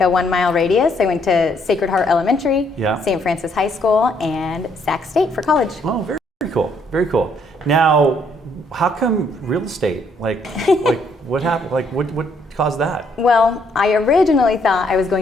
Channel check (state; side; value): normal; both; correlation 0.69